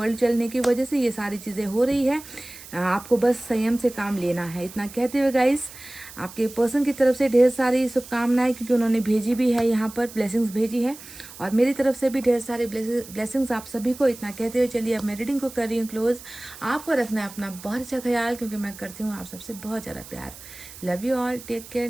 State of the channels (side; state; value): right; noise; hiss, 16 dB below the sound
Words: चलने की वजह से ये सारी चीज़ें हो रही है, आपको बस संयम से काम लेना है। इतना कहते हुए गाइस, आपके पर्सन की तरफ से ढेर सारी शुभकामनाएं, क्योंकि उन्होंने भेजी भी है यहाँ पर, ब्लेसिंग्स भेजी है, और मेरी तरफ से भी ढेर सारे ब्लेसिंग्स आप सभी को। इतना कहते हुए चलिए अब मैं रीडिंग को कर रही हूँ क्लोज। आपको रखना है अपना बहुत अच्छा ख्याल, क्योंकि मैं करती हूँ आप सबसे बहुत ज़्यादा प्यार। Love you all, take care,